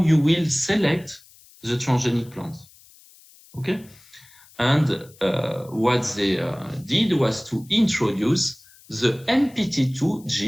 will select the transgenic plant. Okay? And what they did was to introduce the NPT2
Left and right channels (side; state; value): left; noise; hiss, 26 dB below the sound